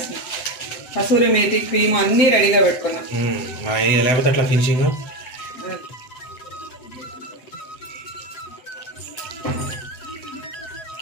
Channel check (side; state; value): right; late; 7.9 ms